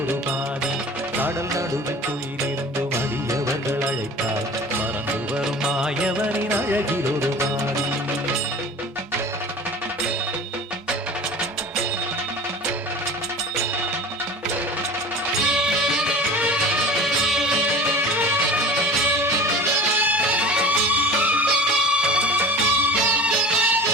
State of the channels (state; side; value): normal; both; correlation 0.39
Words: பாதி. கடல் நடுவில் துயிலிருந்து மடியவர்கள் அழைத்தார் மறந்து வரும் மாயவனின் அழகில் ஒரு பாதி.